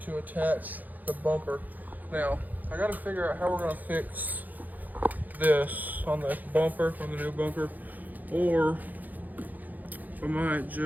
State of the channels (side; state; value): left; late; 0.083 ms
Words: attach the bumper. Now, I got to figure out how we're going to fix this on the bumper, on the new bumper, or I might